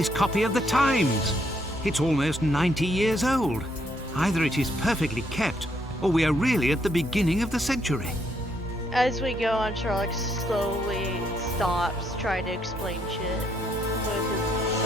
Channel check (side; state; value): both; normal; correlation 0.73